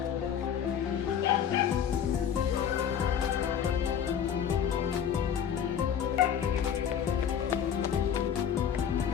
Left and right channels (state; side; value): quieter; right; 8.5 dB